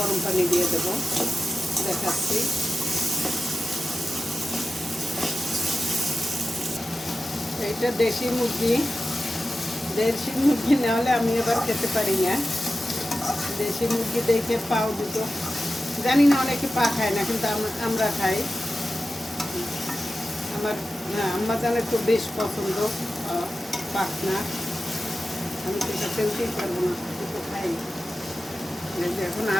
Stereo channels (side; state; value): both; normal; correlation 0.94